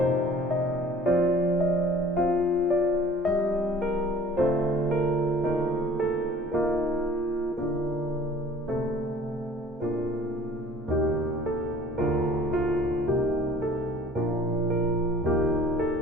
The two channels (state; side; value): normal; both; correlation 0.50